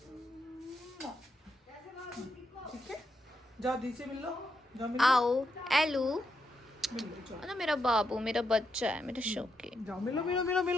ठीक है। जाओ दी से मिल लो, जाओ मिल लो। आओ एलू, मिल लो, जाओ ना मेरा बाबू, मेरा बच्चा है, मेरा शौकी। जाओ मिलो मिलो मिलो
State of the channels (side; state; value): both; normal; correlation 0.82